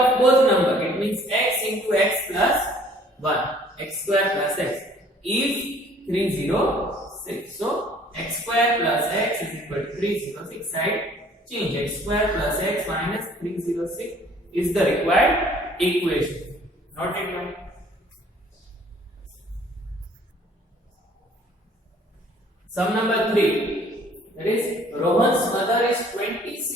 both number, it means x into x plus 1, x square plus x is 306. So x square plus x is equal to 306. Side change, x square plus x minus 306 is the required equation. Not it one. Sum number 3. That is Rohan's mother is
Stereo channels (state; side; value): normal; both; correlation 0.56